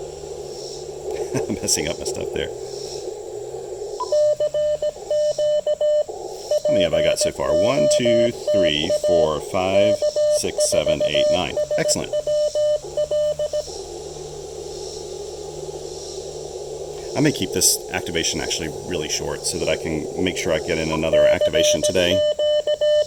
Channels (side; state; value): both; identical; correlation 1.00